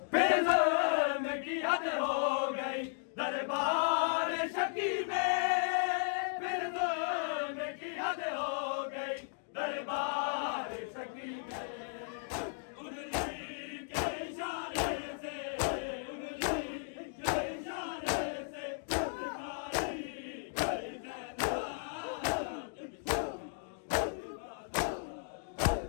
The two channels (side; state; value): right; silent; digital silence